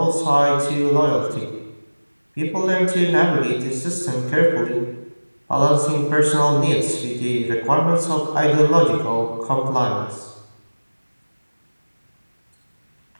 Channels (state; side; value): inverted; both; correlation -1.00